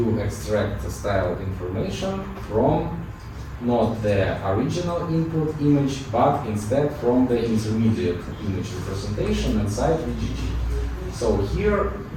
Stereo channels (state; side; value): identical; both; correlation 1.00